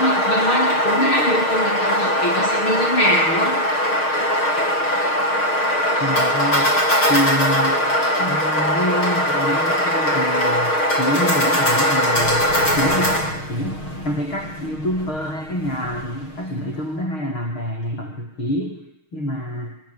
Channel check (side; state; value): right; late; 6.5 ms